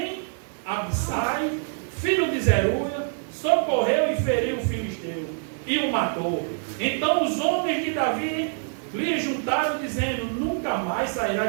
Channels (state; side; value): silent; left; digital silence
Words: Abissai, filho de Zeruia, socorreu e feriu o filisteu, e o matou. Então os homens de Davi lhe juntaram, dizendo: nunca mais